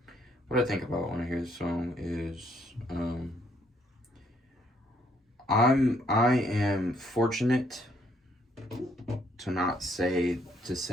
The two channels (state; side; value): normal; both; correlation 0.69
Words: What I think about when I hear this song is, I am fortunate to